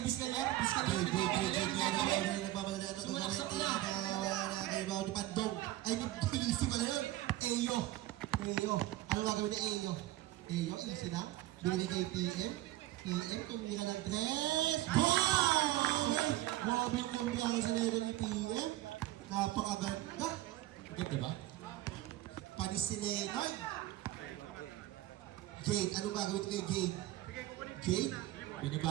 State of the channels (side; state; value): left; quieter; 15.9 dB